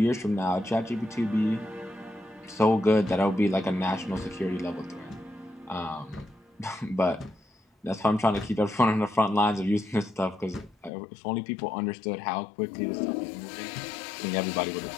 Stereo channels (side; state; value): right; drops out; at 10.9 s